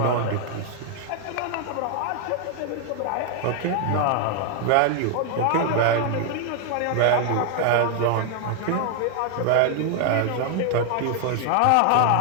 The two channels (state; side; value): different; both; correlation 0.00